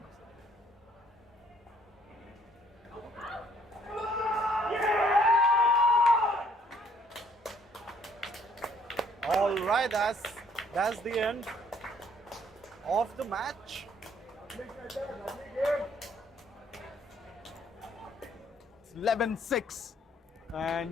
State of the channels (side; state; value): both; normal; correlation 0.63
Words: All right, that's the end of the match. It's 11-6,